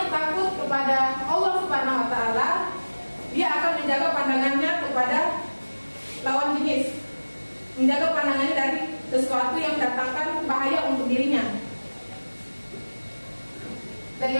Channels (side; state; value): both; inverted; correlation -1.00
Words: takut kepada Allah Subhanahu wa Ta'ala, dia akan menjaga pandangannya kepada lawan jenis, menjaga pandangannya dari sesuatu yang mendatangkan bahaya untuk dirinya. Dan